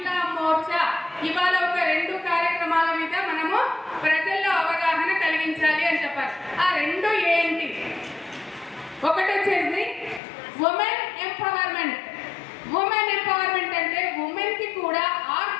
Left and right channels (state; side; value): drops out; right; at 10.2 s